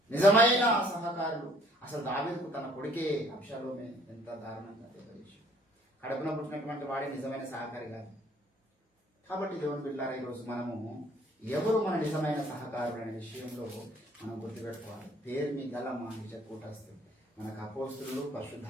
నిజమైన సహకారులు. అసలు దావీదుకు తన కొడుకే అబ్షాలోమే ఎంత దారుణంగా తెలియజేసి కడుపున పుట్టినటువంటి వాడే నిజమైన సహకారి కాదు. కాబట్టి దేవుని బిడ్డలారా, ఈరోజు మనము ఎవరు మన నిజమైన సహకారులు అనే విషయంలో మనం గుర్తుపెట్టుకోవాలి. పేరు మీ గల మా నిజ కూటస్థులు, మనకు అపోస్తులు,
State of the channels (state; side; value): normal; both; correlation 0.59